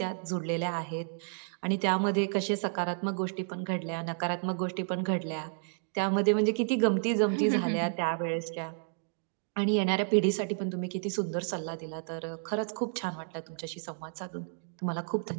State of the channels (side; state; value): left; silent; digital silence